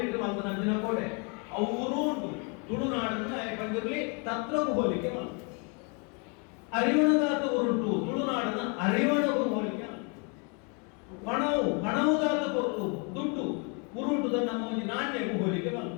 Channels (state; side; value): quieter; right; 34.0 dB